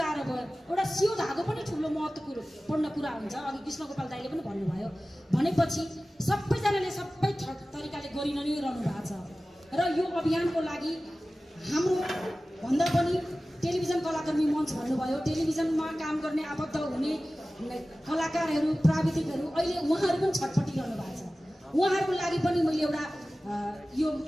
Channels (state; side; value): normal; both; correlation 0.96